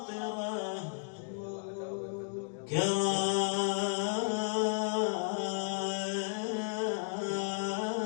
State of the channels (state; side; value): silent; right; digital silence